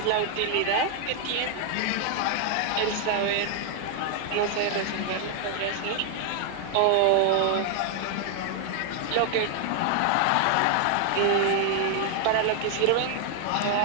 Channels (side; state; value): both; different; correlation 0.00